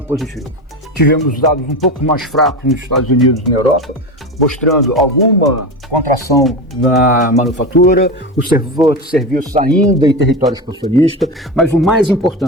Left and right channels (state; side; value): normal; both; correlation 0.21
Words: positivo. Tivemos dados um pouco mais fracos nos Estados Unidos e na Europa, mostrando alguma contração na manufatura, o setor de serviços ainda em território expansionista, mas o mais